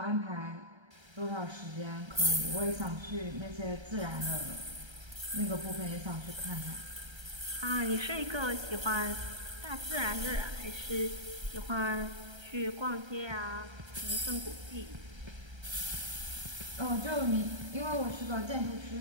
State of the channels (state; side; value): late; left; 1.3 ms